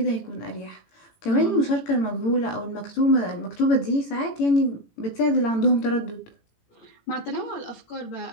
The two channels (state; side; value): late; right; 18 ms